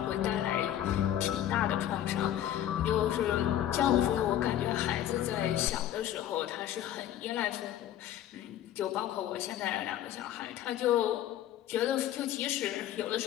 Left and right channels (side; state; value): right; quieter; 11.8 dB